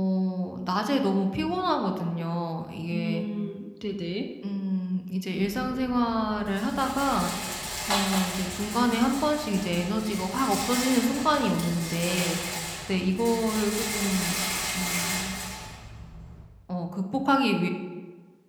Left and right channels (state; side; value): identical; both; correlation 1.00